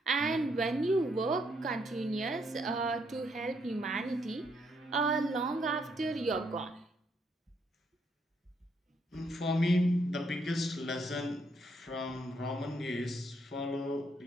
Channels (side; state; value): both; normal; correlation 0.74